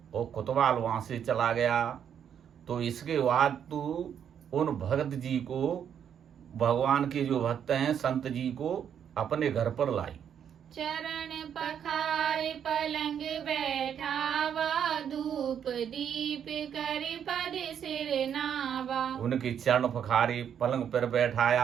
और कोतवाल वहां से चला गया। तो इसके बाद तू उन भगत जी को, भगवान के जो भक्त हैं संत जी को अपने घर पर लाई। चरण पखार पलंग बैठावा, धूप दीप कर पद सिर नावा। उनके चरण पखारे, पलंग पर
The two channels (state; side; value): quieter; left; 8.6 dB